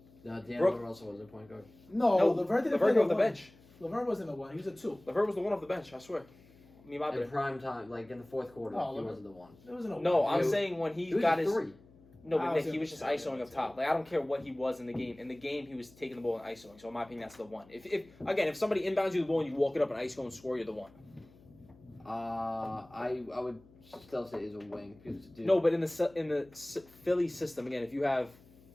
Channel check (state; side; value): noise; left; hum, 26 dB below the sound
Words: No, Brook- D'Angelo Russell was a point guard. No, Levert didn't play Levert came off the one. bench. Levert wasn't the one. He was a 2. Levert was the one off the bench. I swear. Me, my In bad. prime time, like in the fourth quarter, Oh, he Levert- wasn't the one. It wasn't a No, one. I'm He was- saying when he He was got a his. 3. No, I but was Nick, he gonna was just say ISOing that up too. top. Like I don't care what he was in the game. In the game, he was taking the ball and ISOing. So in my opinion, that's the one. If somebody inbounds you the ball and you walk it up and ISO and score, you're the one. I would still say he's a wing because dude. No, but in the Philly system again, if you have